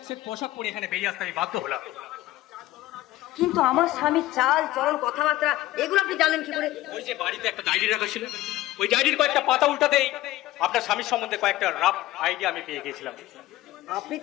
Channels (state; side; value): quieter; right; 16.2 dB